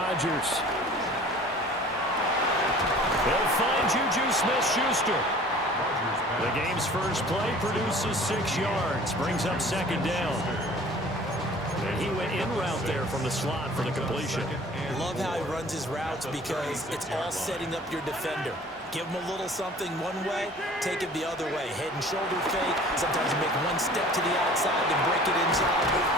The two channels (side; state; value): both; normal; correlation 0.47